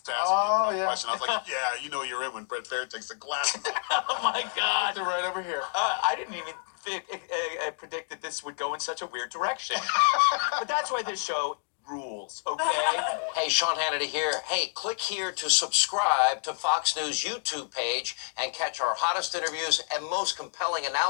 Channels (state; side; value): silent; right; 59 dB below the other